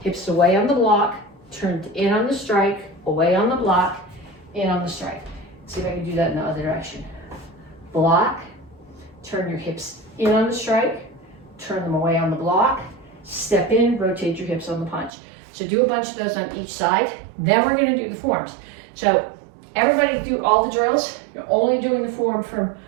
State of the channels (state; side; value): drops out; left; at 15.1 s